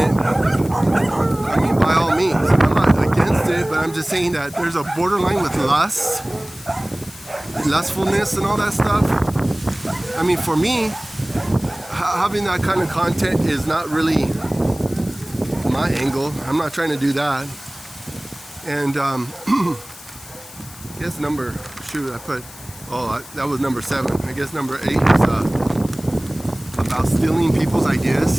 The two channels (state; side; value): noise; left; hiss, 18 dB below the sound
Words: I mean, by all means, I'm not against it, but I'm just saying that there's a borderline with lustfulness and all that stuff. I mean, for me, having that kind of content is not really my angle. I'm not trying to do that. And I guess that was number 7. I guess number 8 is about stealing people's